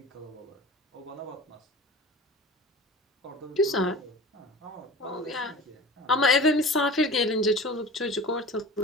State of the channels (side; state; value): both; normal; correlation 0.38